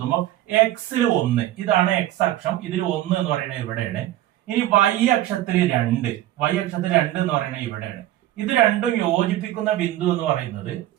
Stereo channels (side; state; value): left; quieter; 14.0 dB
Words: എക്സിൽ 1, ഇതാണ് എക്സ് അക്ഷം. ഇതിൽ 1 എന്ന് പറയുന്നത് ഇവിടെയാണ്. ഇനി വൈ അക്ഷത്തിൽ 2, വൈ അക്ഷത്തിൽ 2 എന്ന് പറയുന്നത് ഇവിടെയാണ്. ഇത് രണ്ടും യോജിപ്പിക്കുന്ന ബിന്ദു എന്ന് പറയുന്നത്